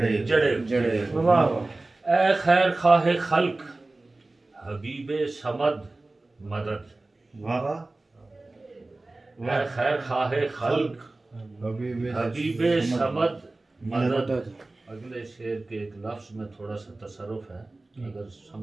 جڑے اے خیر خواہ خلق حبیب صمد مدد اے خیر خواہ خلق حبیب صمد مدد اگلے شعر کے ایک لفظ میں تھوڑا سا تصرف ہے، اگر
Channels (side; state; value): left; quieter; 3.0 dB